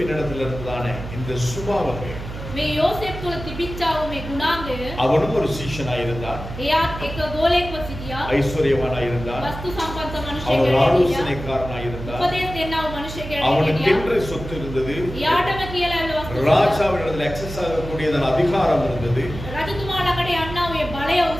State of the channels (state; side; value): noise; right; hum, 10 dB below the sound